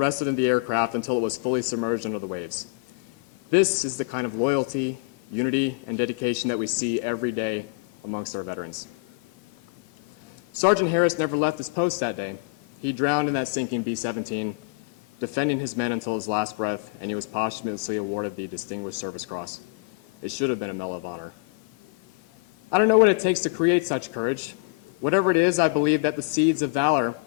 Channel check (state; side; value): quieter; right; 30.4 dB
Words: of them the aircraft until it was fully submerged under the waves. This is the kind of loyalty, unity, and dedication that we see every day amongst our veterans. Sergeant Harris never left his post that day. He drowned in that sinking B-17, defending his men until his last breath, and he was posthumously awarded the Distinguished Service Cross. It should have been a Medal of Honor. I don't know what it takes to create such courage. Whatever it is, I believe that the seeds of valor